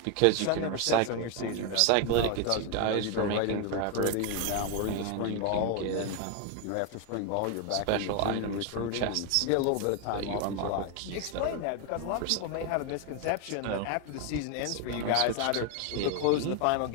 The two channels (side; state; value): both; different; correlation 0.01